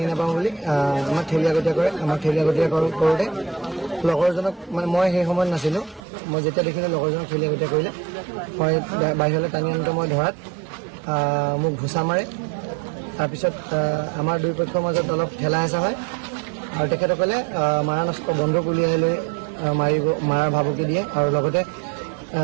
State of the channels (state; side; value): drops out; left; at 6.0 s